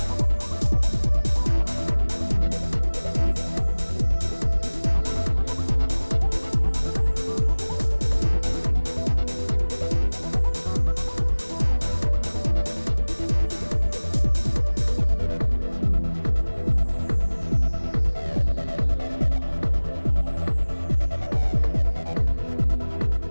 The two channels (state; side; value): inverted; both; correlation -1.00